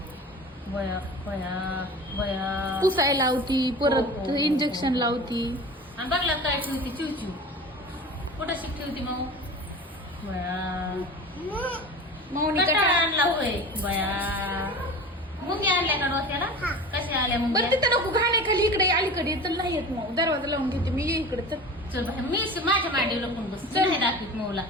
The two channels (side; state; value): both; normal; correlation 0.35